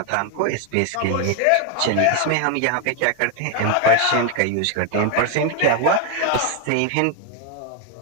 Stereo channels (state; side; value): different; both; correlation 0.01